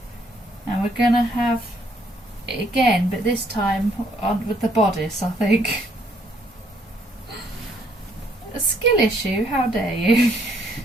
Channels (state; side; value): normal; both; correlation 0.68